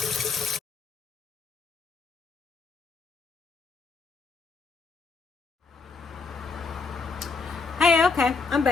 Hey, okay, I'm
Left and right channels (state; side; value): quieter; right; 4.5 dB